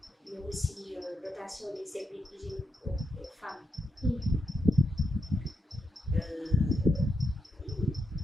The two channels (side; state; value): both; normal; correlation 0.82